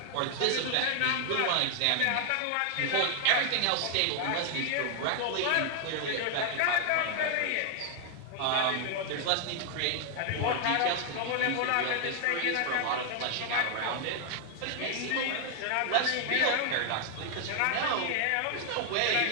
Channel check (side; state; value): both; different; correlation 0.00